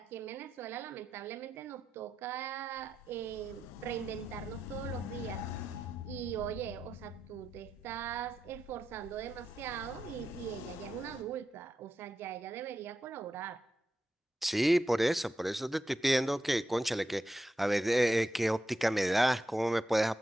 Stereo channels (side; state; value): both; normal; correlation 0.87